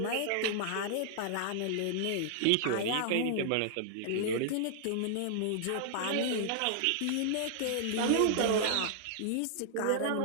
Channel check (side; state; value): both; different; correlation -0.01